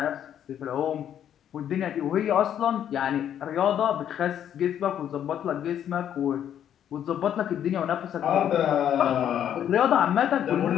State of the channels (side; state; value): right; quieter; 9.9 dB